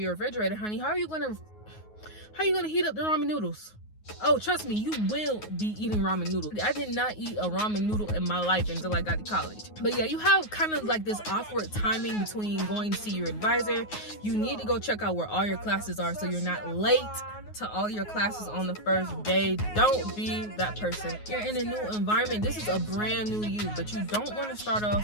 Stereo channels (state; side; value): late; right; 9.5 ms